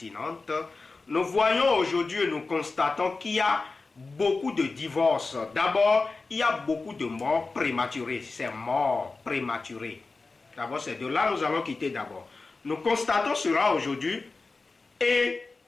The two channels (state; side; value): quieter; right; 3.8 dB